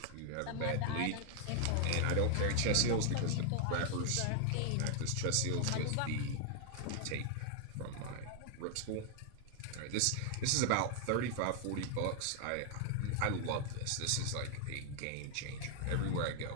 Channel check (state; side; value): different; both; correlation 0.00